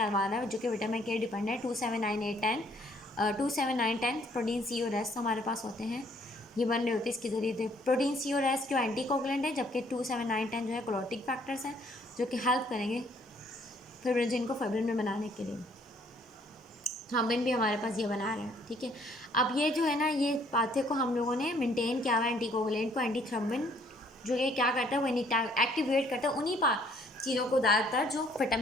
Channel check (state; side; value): normal; both; correlation 0.63